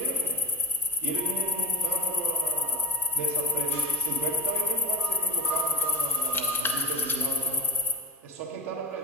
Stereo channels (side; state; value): both; normal; correlation 0.16